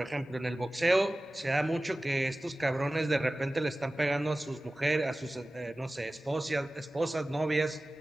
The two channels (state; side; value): normal; both; correlation 0.96